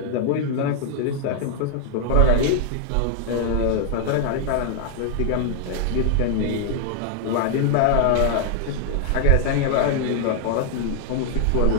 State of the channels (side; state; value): both; different; correlation -0.01